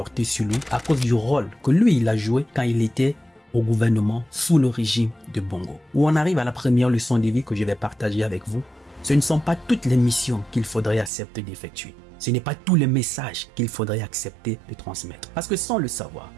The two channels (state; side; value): drops out; left; at 11.1 s